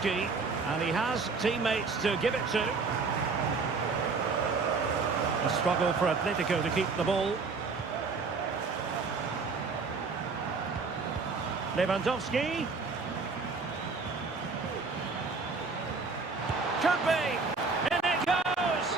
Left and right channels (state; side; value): quieter; left; 4.4 dB